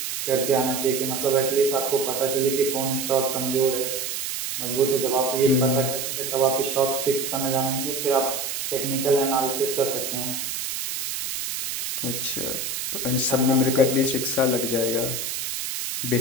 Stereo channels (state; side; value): noise; right; hiss, 4 dB below the sound